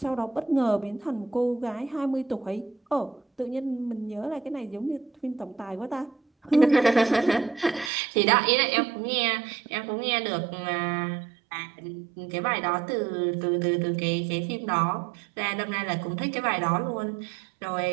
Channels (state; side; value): drops out; left; at 7.9 s